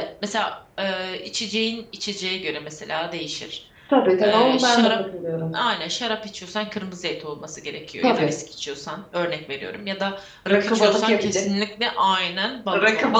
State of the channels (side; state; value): both; identical; correlation 1.00